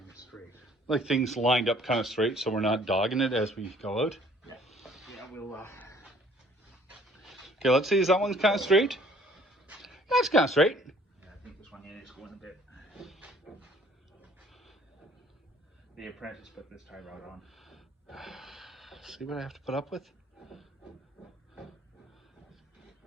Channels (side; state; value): both; normal; correlation 0.57